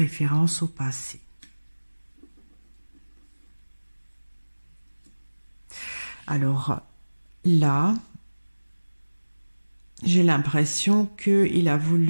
au passé. Alors là, j'ai l'impression qu'il a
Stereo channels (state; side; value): inverted; both; correlation -1.00